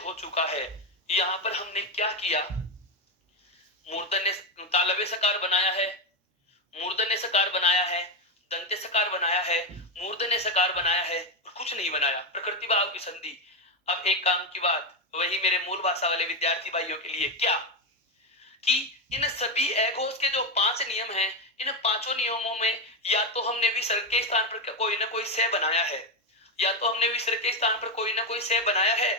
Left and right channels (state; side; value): normal; both; correlation 0.09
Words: चुका है। यहाँ पर हमने क्या किया? मूर्धन्य तालव्य सकार बनाया है, मूर्धन्य सकार बनाया है, दंत्य सकार बनाया है, मूर्धन्य सकार बनाया है, और कुछ नहीं बनाया, प्रकृति भाव की संधि। अब एक काम की बात, वही मेरे मूल भाषा वाले विद्यार्थी भाइयों के लिए, क्या कि इन सभी एगोस के जो 5 नियम हैं, इन पांचों नियमों में या तो हमने विसर्ग के स्थान पर कोई ना कोई से बनाया है, या तो हमने विसर्ग के स्थान पर कोई ना कोई से बनाया है,